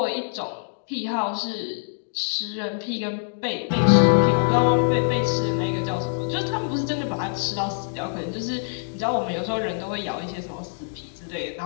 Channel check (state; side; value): silent; right; digital silence